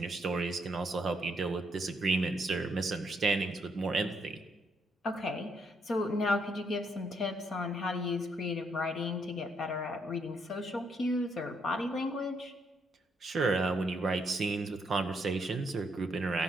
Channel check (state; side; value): normal; both; correlation 0.74